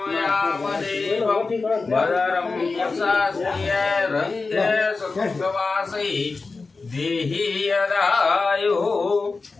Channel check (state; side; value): quieter; right; 4.1 dB